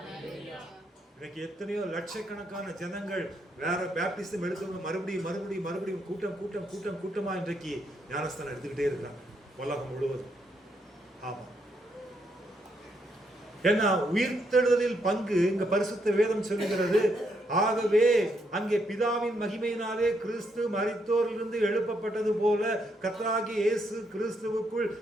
இன்னைக்கு எத்தனையோ லட்சக்கணக்கான ஜனங்கள் வேற பேப்டிசம் எடுத்தவங்க மறுபடியும் கூட்டமா இன்றைக்கு ஞானஸ்தானம் எடுத்துக்கிட்டே இருக்கிறாங்க உலகம் முழுவதும். ஆமா, ஏன்னா உயிர்த்தெழுதலில் பங்கு இங்க பரிசுத்த வேதம் சொல்லுகிறது. ஆகவே அங்கே பிதாவின் மகிமையினாலே கிறிஸ்து மரித்தோரிலிருந்து எழுப்பப்பட்டது போல கர்த்தராகிய இயேசு கிறிஸ்துவுக்குள்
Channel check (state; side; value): normal; both; correlation 0.76